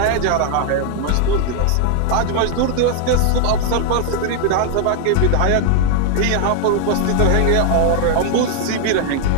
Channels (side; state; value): both; different; correlation 0.00